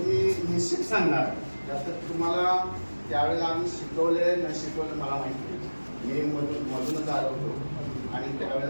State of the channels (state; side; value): inverted; both; correlation -1.00